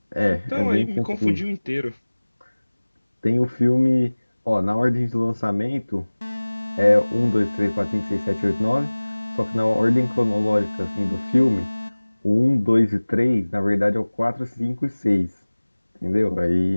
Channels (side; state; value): both; inverted; correlation -1.00